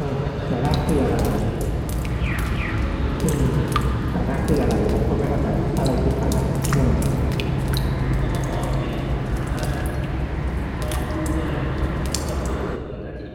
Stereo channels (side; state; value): both; identical; correlation 1.00